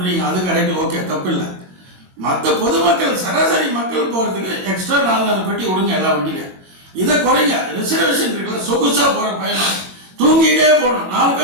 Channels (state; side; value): late; left; 22 ms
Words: அது கரெக்டு, ஓகே, தப்பு இல்லை. மற்ற பொதுமக்கள் சராசரி மக்கள் போகிறதுக்கு எக்ஸ்ட்ரா 4 பெட்டி விடுங்க எல்லா வண்டியிலும். இதை குறைங்க. ரிசர்வேஷன் இருக்குல்ல, சொகுசாக போகிற பயணம் தூங்கிட்டே போகணும். 4